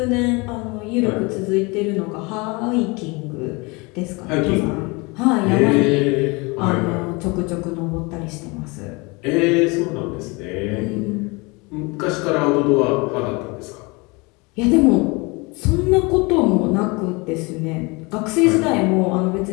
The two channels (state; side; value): quieter; right; 27.0 dB